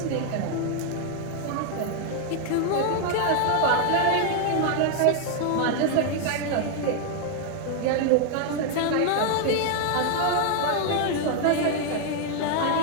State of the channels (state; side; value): different; both; correlation 0.00